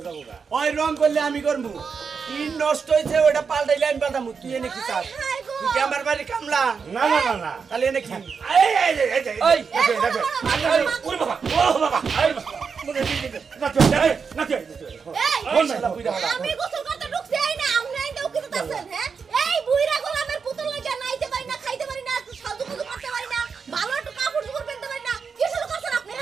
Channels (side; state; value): left; quieter; 5.7 dB